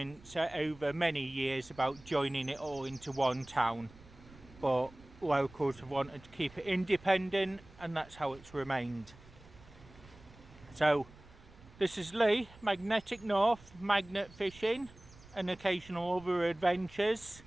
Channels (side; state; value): right; noise; rumble, 22 dB below the sound